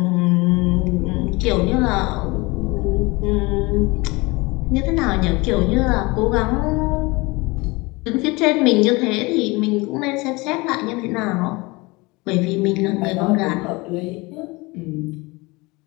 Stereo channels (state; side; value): quieter; right; 24.3 dB